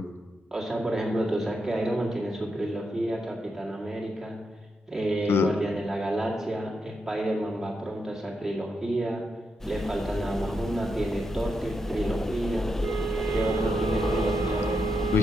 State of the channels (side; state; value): both; normal; correlation 0.83